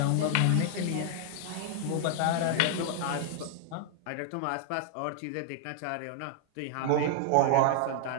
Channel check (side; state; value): both; different; correlation 0.00